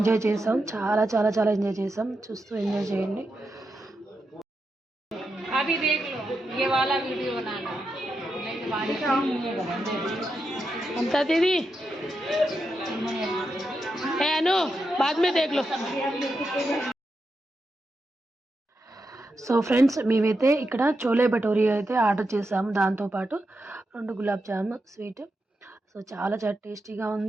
చేసాం, చాలా చాలా చాలా ఎంజాయ్ చేసాం. చూస్తూ ఎంజాయ్ చేయండి. अभी देख लो ये वाला वीडियो बनाना అంతా దీది అను బాద్ మే దేఖ్ లో. సో ఫ్రెండ్స్ మేమైతే ఇక్కడ చోలే భటోరీ అయితే ఆర్డర్ చేసాము. దాంతోపాటు 2 గులాబ్ జామ్ స్వీట్. సో చాలా చాలా టేస్టీగా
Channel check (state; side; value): normal; both; correlation 0.86